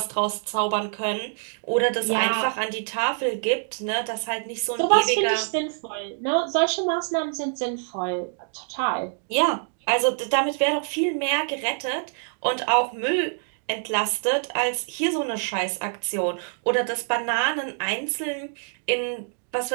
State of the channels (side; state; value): left; silent; 61 dB below the other